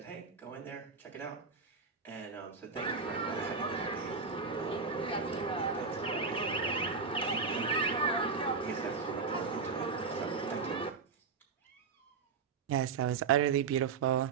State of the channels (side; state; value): left; quieter; 5.1 dB